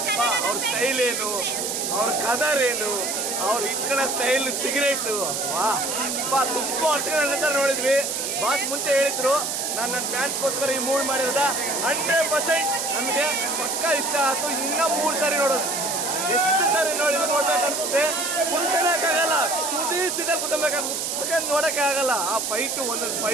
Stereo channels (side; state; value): right; noise; hiss, 2 dB below the sound